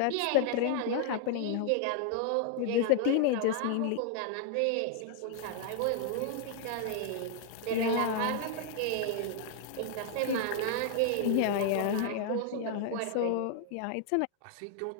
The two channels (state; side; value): different; both; correlation 0.00